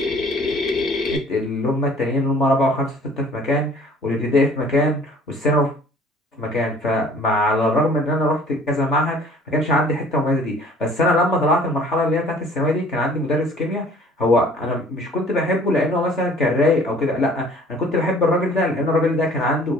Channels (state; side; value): normal; both; correlation 0.52